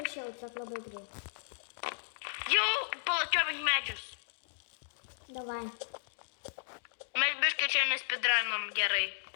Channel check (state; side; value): silent; right; digital silence